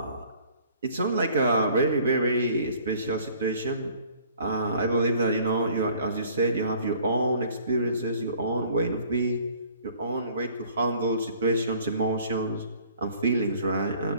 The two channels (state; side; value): inverted; both; correlation -0.55